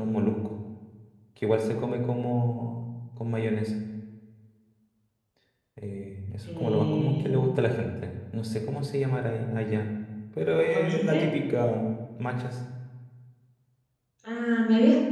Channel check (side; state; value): both; identical; correlation 1.00